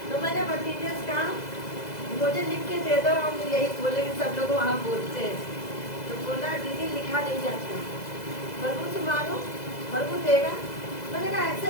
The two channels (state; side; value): late; right; 2.0 ms